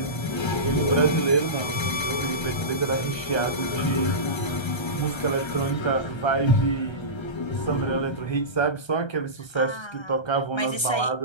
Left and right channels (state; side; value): late; right; 1.3 ms